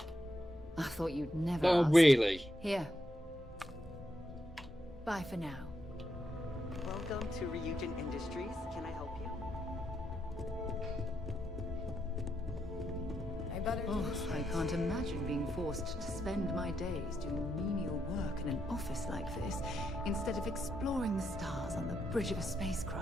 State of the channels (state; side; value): normal; both; correlation 0.81